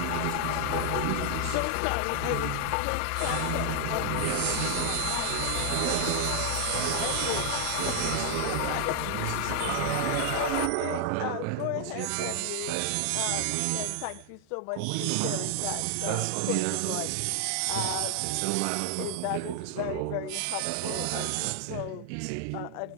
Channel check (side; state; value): both; different; correlation 0.00